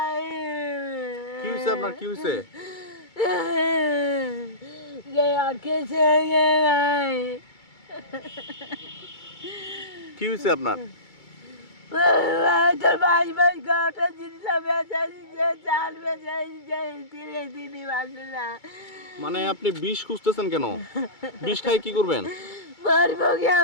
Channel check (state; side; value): late; right; 2.3 ms